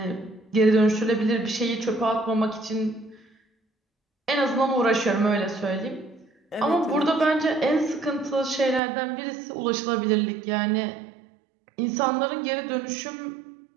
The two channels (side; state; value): left; drops out; at 8.8 s